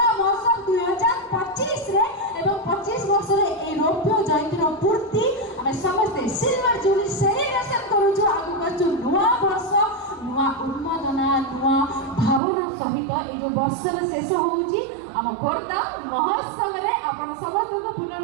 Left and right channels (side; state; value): left; drops out; at 12.4 s